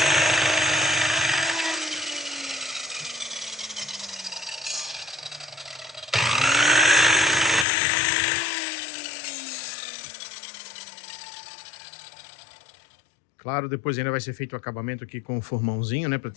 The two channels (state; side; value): drops out; right; at 7.7 s